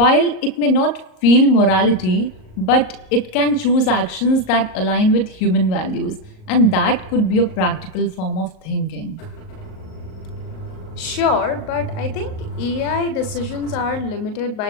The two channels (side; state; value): right; late; 38 ms